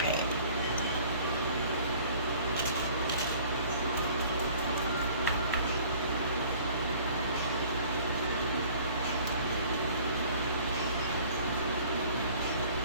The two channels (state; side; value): inverted; both; correlation -0.51